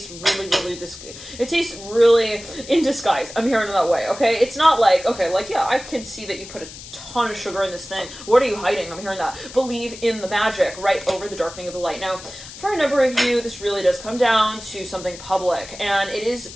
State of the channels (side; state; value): left; noise; hiss, 15 dB below the sound